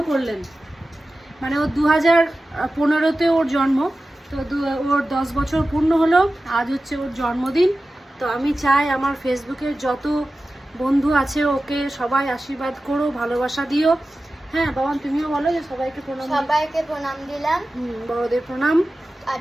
করলেন। মানে ও 2015-তে ওর জন্ম, তো ওর 10 বছর পূর্ণ হলো, আজ হচ্ছে ওর জন্মদিন। তো আমি চাই আমার ফেসবুকের যত বন্ধু আছে ওকে সবাই আশীর্বাদ করো, ভালোবাসা দিও। হ্যাঁ বাবা, তুমিও বলো যে সবাইকে প্রণাম। সবাইকে প্রণাম দিলাম, বড়দের প্রণাম আর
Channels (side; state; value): both; normal; correlation 0.95